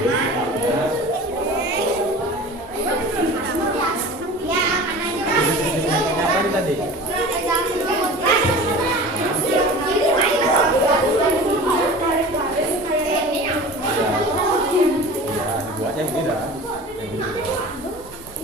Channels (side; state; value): both; normal; correlation 0.38